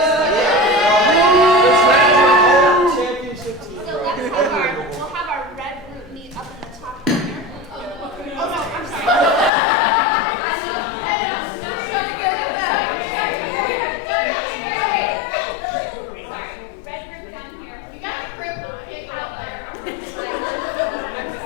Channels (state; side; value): drops out; right; at 9.5 s